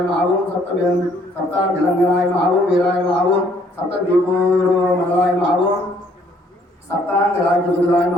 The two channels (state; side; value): normal; both; correlation 0.64